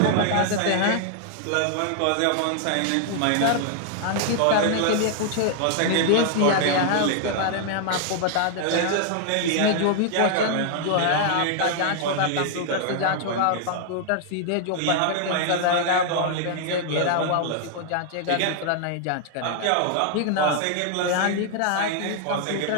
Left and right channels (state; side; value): different; both; correlation 0.00